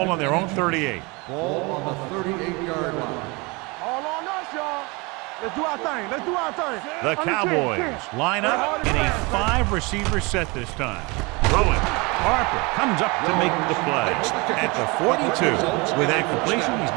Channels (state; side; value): quieter; left; 26.9 dB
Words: on their own 38. Ball on the 38-yard line. All on us, y'all. Let's do our thing. Let's do our thing. The Cowboys line up in a 5-receiver set this time. Throwing. Harper comes up to make the play at the 42. With that completion, he's